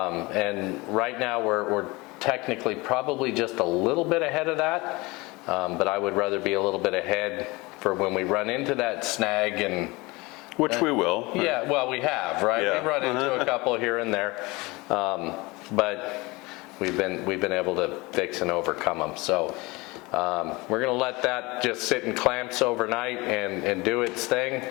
right now we're technically probably just a little bit ahead of that, but I would rather be a little bit ahead for when we run into that snag and which we will. Yeah, well, we have, right? Yeah. We've run into a couple here and there, but we've been able to fix and overcome them. So we're gonna let that just sit in clamps overnight and do its thing.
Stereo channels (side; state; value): right; quieter; 23.7 dB